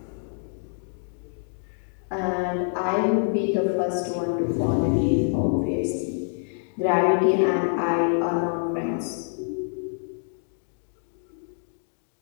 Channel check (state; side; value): silent; right; digital silence